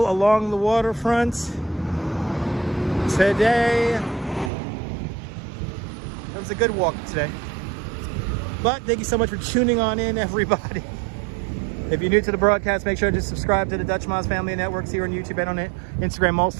along the waterfront today. It was a good walk today. But thank you so much for tuning on in, everybody. If you're new to the broadcast, make sure to subscribe to the Dutch Moz Family of Networks here on YouTube and on Instagram, all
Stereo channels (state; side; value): drops out; left; at 4.5 s